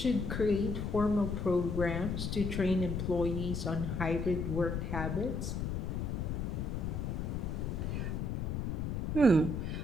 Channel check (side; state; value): left; noise; rumble, 2 dB below the sound